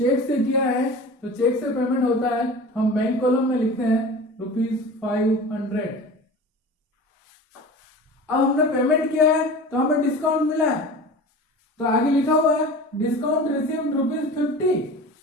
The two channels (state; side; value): normal; both; correlation 0.37